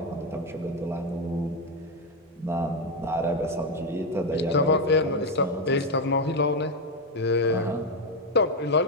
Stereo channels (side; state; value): both; normal; correlation 0.08